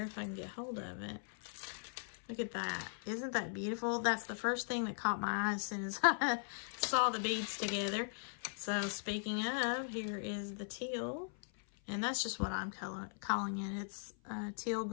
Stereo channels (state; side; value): silent; right; 52 dB below the other